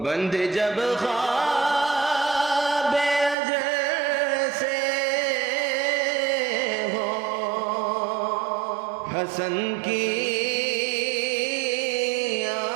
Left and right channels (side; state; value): left; drops out; at 3.4 s